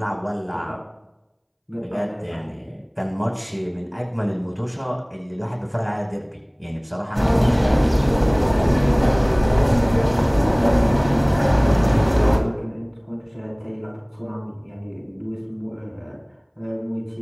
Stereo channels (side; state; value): both; identical; correlation 1.00